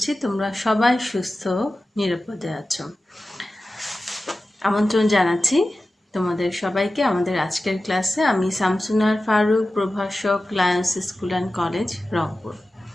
তোমরা সবাই সুস্থ নিরাপদে আছো। আমন্ত্রণ জানাচ্ছি তোমাদের সবাইকে আমাদের আজকের ক্লাসে। আমি শামসুনার ফারুক, প্রভাষক, Lions school and college, Rangpur.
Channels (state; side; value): normal; both; correlation 0.94